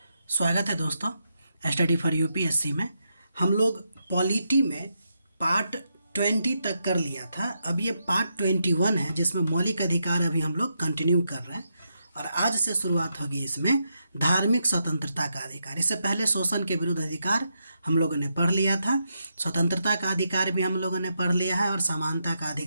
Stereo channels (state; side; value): inverted; both; correlation -0.82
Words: स्वागत है दोस्तों स्टडी फॉर यूपीएससी में। हम लोग पॉलिटी में पार्ट 20 तक कर लिया था। अब ये पार्ट 21 है जिसमें मौलिक अधिकार अभी हम लोग कंटिन्यू कर रहे हैं और आज से शुरुआत होगी इसमें धार्मिक स्वतंत्रता का अधिकार। इससे पहले शोषण के विरुद्ध अधिकार हम लोगों ने पढ़ लिया था, स्वतंत्रता का अधिकार भी हम लोगों ने पढ़ लिया है और समानता का